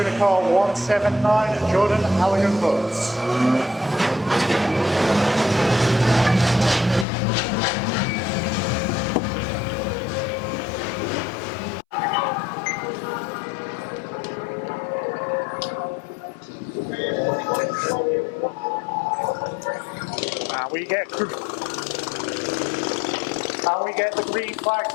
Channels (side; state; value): right; drops out; at 7.1 s